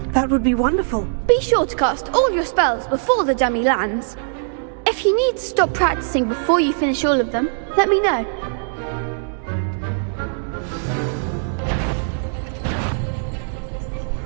That would be wonderful. Be sure to cast all your spells before the dummy lands. If you need to stop practicing before you finish all of them, let me know.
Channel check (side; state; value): left; silent; 65 dB below the other